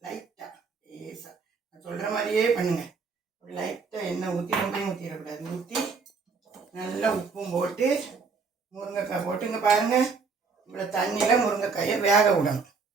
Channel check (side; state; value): left; quieter; 4.9 dB